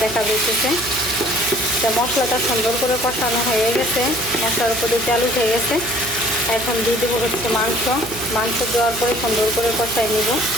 দেখা যাইতেছে। তো মশলাটা সুন্দর করে কষানো হয়ে গেছে, মশলার উপরে তেল উঠে গেছে। এখন দিয়ে দেবো হচ্ছে মাংস দেওয়ার পরে সুন্দর করে কষাই নিব।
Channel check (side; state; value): right; noise; hum, 14 dB below the sound